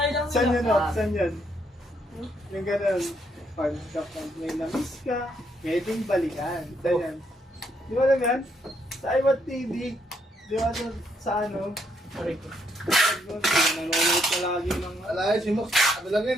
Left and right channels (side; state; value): both; normal; correlation 0.74